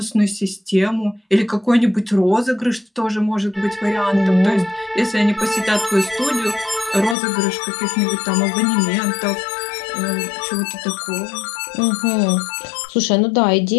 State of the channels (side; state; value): right; drops out; at 7.2 s